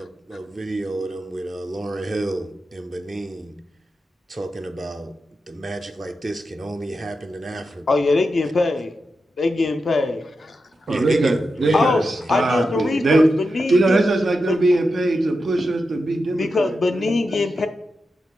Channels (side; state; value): both; normal; correlation 0.89